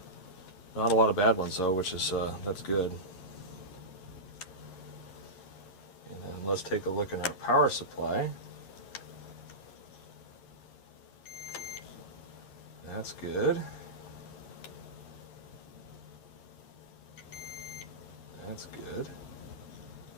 Not a lot of bad ones though, which is that's good. And then let's take a look at our power supply. That's good. That's good.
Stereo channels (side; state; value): right; late; 11 ms